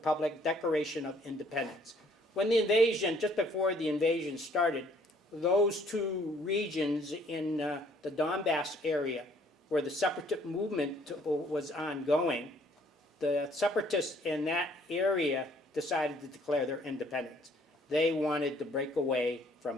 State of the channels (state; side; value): normal; both; correlation 0.61